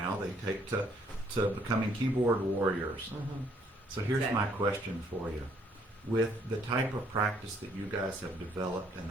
they take to becoming keyboard warriors. So here's my question for you. With the type of practice that you guys have developed and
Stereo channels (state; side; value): normal; both; correlation 0.66